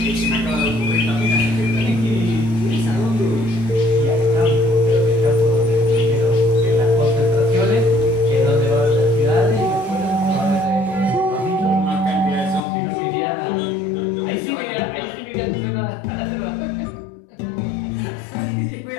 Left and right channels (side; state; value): right; drops out; at 12.7 s